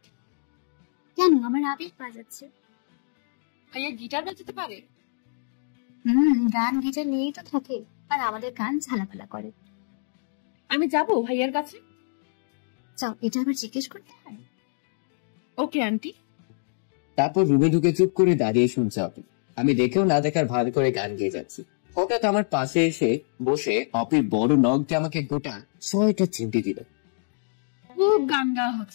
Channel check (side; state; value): right; silent; digital silence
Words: কেন? আমার আবেগ বাজাচ্ছে। ভাইয়া গিটার বাজাতে পারে? গান গিটার নিয়েই তো থাকে, আর আমাদের গান ঝালাপালা করে। আমি যাব ভাইয়ার কাছে। চাও, এটা আবার জিজ্ঞেস করতে হয়? Okay aunty. তারপর রুমে ঢুকে চুপ করে দাঁড়িয়ে শুনছে অপি। আমি দেখেও না দেখার ভান করে গান গেয়ে যাচ্ছি। হঠাৎ আমার পাশে এসে বসে অপির বড় নখ দিয়ে আমাকে গোটা 6টা চিমটি দিল। খুব গান গাওয়া